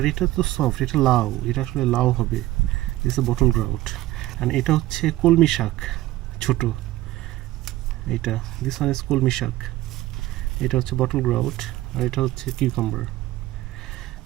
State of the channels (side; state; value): left; quieter; 16.2 dB